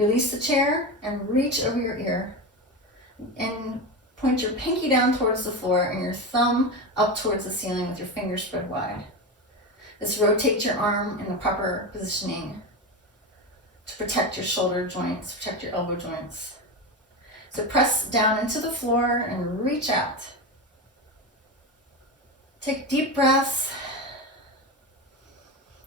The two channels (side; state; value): both; normal; correlation 0.19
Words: the chair and reach over your ear. And point your pinky down towards the floor and your thumb up towards the ceiling with your fingers spread wide. This rotates your arm in the proper positioning to protect your shoulder joints, protect your elbow joints. So press down into the floor and reach out. Take deep breaths.